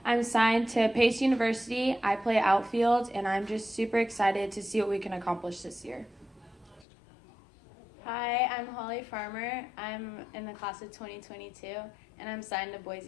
I'm signed to Pace University. I play outfield, and I'm just super excited to see what we can accomplish this year. Hi, I'm Holly Farmer. I'm in the class of 2022, and I'm signed to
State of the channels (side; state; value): right; drops out; at 6.9 s